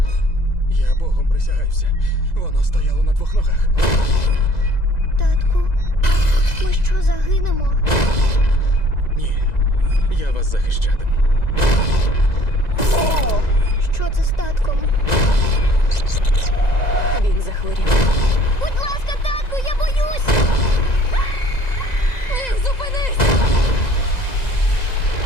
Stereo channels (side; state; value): right; late; 2.0 ms